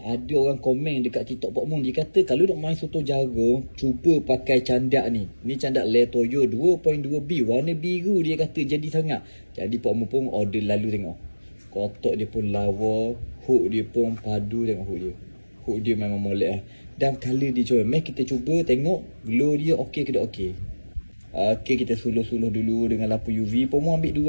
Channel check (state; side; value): inverted; both; correlation -1.00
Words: ada orang komen dekat TikTok Pak Mun. Dia kata kalau nak main soto jagung, cuba pakai candak ni. Ni candak Le Toyo 2.2B. Warna biru dia kata jadi sangat. Jadi Pak Mun pun order lalu tengok. Kotak dia pun lawa. Hook dia pun padu, tengok hook dia. Hook dia memang molek lah. Dan colour dia comel. Mari kita cuba tengok glow dia okey ke tak okey. Okey, kita suluh-suluh dulu dengan lampu UV. Pak Mun